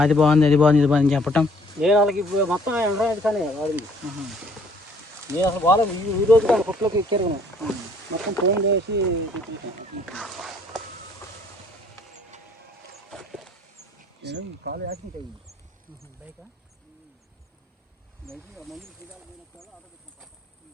బాగుంది అది బాగుంది ఇది బాగుంది చెప్పటం. నేను వాళ్ళకి ఇప్పుడు మొత్తం ఎండ్రాయిడ్ కానీ వాడింది. నేను అసలు బాగాలేదు. ఈ రోజు కానీ కొట్లోకి ఎక్కారు మొత్తం ఫోన్ చేసి కాలు యాక్సిడెంట్ అయ్యింది. బైకా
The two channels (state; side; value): normal; both; correlation 0.61